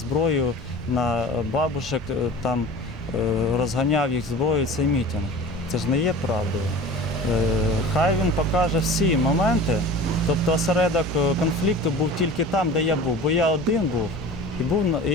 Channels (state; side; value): normal; both; correlation 0.38